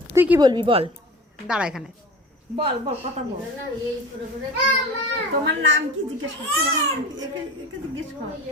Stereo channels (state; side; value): normal; both; correlation 0.36